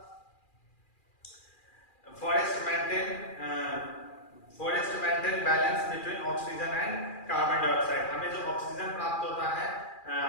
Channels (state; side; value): late; right; 2.4 ms